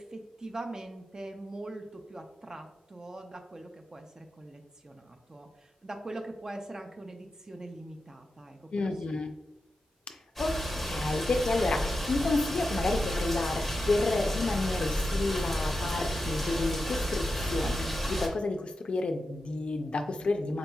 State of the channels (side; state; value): both; normal; correlation 0.90